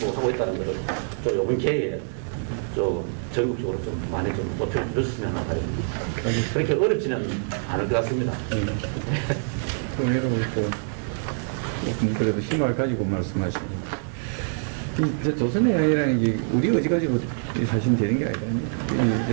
하고 있다는 것을 좀 이번 기회에 좀 전국적으로 좀 많이 좀 높여 주셨으면 하는 바람입니다. 그렇게 어렵지는 않을 것 같습니다. 그럼 여러분 그래도 희망을 가지고 말씀하시고 이제 조선의 양이라는 게 우리 의지 가지고 사실 되는 게 아니라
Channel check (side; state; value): left; silent; digital silence